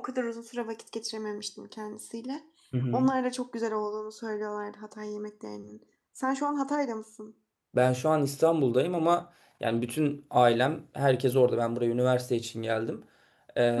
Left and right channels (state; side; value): identical; both; correlation 1.00